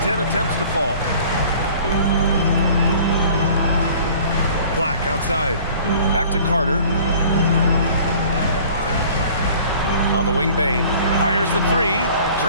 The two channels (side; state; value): both; inverted; correlation -0.49